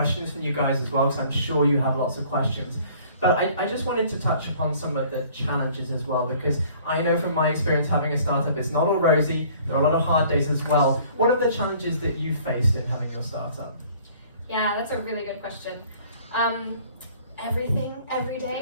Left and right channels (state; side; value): inverted; both; correlation -0.54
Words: from you guys as well, because I'm sure you have lots of questions. But I just wanted to touch upon some of the challenges as well, because I know from my experience having a startup, it's not all rosy. There are a lot of hard days as well. What are the challenges that you faced in having your startup? Yeah, that's a really good question. Everything, every